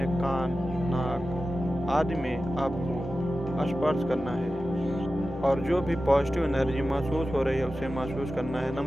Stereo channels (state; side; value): normal; both; correlation 0.94